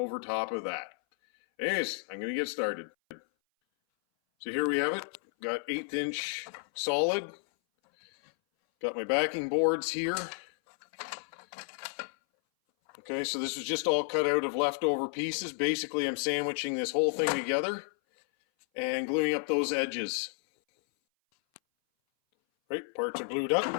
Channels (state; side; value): silent; right; 57 dB below the other